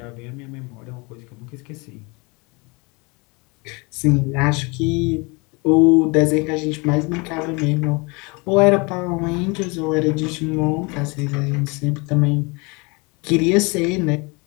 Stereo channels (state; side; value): quieter; right; 28.4 dB